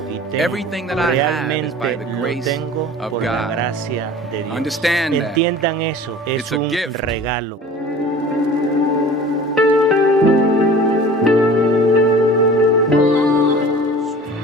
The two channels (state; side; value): normal; both; correlation 0.42